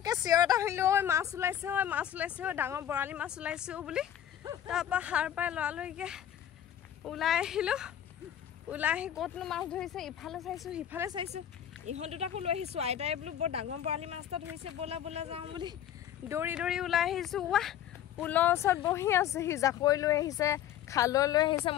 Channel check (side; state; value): right; quieter; 10.7 dB